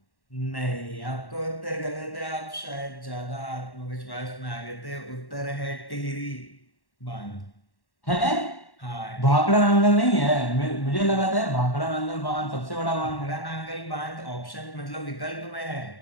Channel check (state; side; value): late; right; 1.1 ms